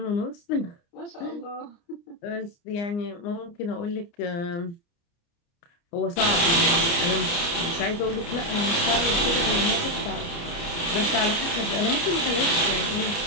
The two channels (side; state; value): right; late; 29 ms